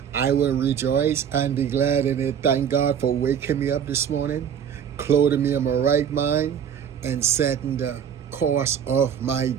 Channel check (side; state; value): left; quieter; 8.3 dB